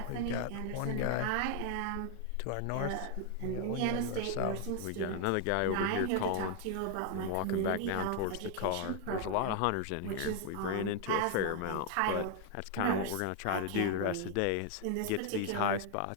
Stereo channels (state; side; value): different; both; correlation 0.00